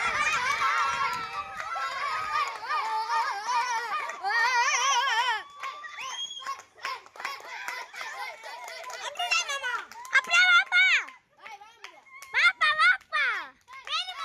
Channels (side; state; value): both; identical; correlation 1.00